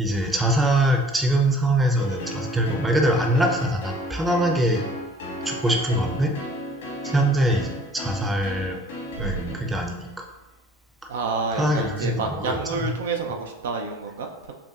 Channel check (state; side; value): normal; both; correlation 0.52